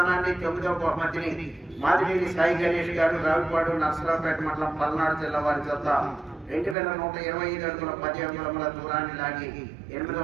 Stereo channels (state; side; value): drops out; left; at 6.8 s